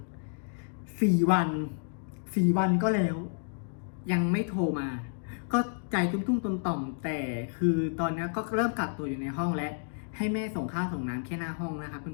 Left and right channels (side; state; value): right; silent; 57 dB below the other